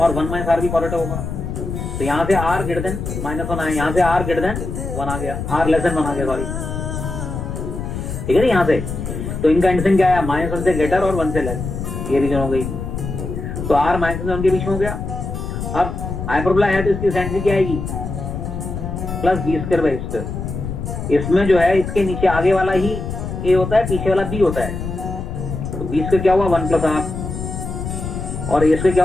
और 1 minus r भी पॉजिटिव होगा. तो यहाँ से r ग्रेटर देन -1 आया, यहाँ से r ग्रेटर देन 1 आ गया, r लेस देन 1 आ गया, सॉरी. ठीक है ना? यहाँ से तो इनका कंडीशन क्या है? -1 से ग्रेटर और 1 से लेस. ये रीजन हो गई. तो r -1 के बीच में हो गया. अब हाइपरबोला है तो इसकी एसेंट्रिसिटी क्या आएगी? Plus B square by square. इसमें जो है इसके नीचे आगे वाला ही ए होता है, पीछे वाला बी होता है. तो बी स्क्वायर क्या हुआ? 1 plus r और ए स्क्वायर क्या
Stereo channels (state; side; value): noise; left; rumble, 5 dB below the sound